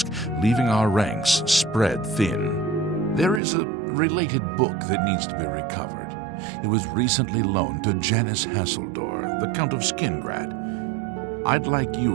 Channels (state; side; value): drops out; left; at 3.4 s